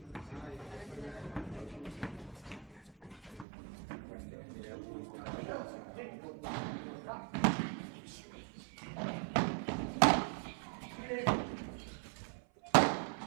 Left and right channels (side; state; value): left; drops out; at 3.5 s